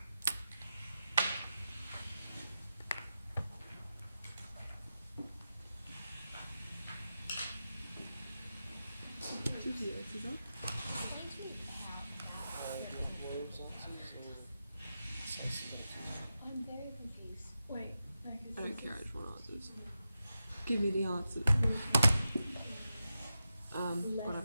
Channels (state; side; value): inverted; both; correlation -0.90